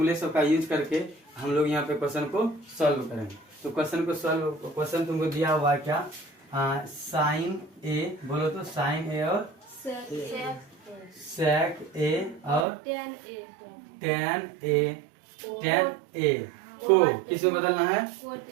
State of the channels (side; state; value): left; drops out; at 12.7 s